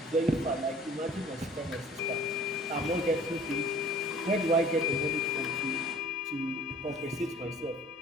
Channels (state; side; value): normal; both; correlation 0.49